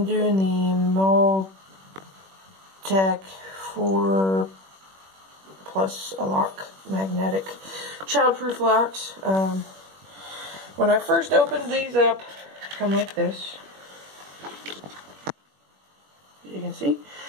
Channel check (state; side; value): late; left; 21 ms